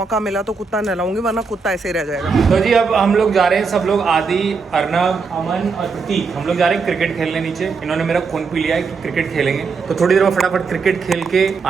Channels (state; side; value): quieter; left; 4.9 dB